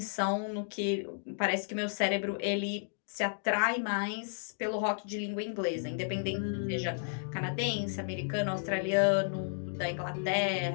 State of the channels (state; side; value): silent; right; digital silence